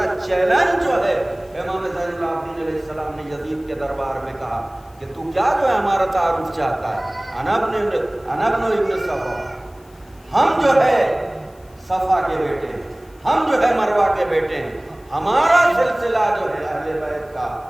چیلنج جو ہے امام زین العابدین علیہ السلام نے یزید کے دربار میں کہا کہ تو کیا جو ہے ہمارا تعارف چاہتا ہے؟ انا ابن ابن صفا، ہم جو ہے صفا کے بیٹے ہیں، ہم جو ہے مروہ کے بیٹے ہیں، ہمارا سلسلہ جو ہے اہل بیت کا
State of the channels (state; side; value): noise; left; hiss, 30 dB below the sound